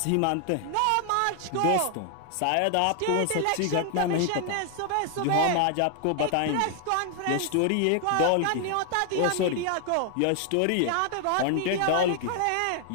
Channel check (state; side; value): different; both; correlation 0.00